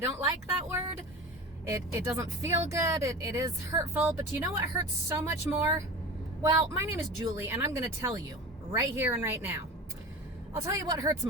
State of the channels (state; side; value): normal; both; correlation 0.32